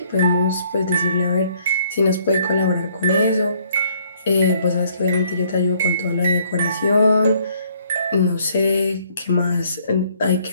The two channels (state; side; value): inverted; both; correlation -0.64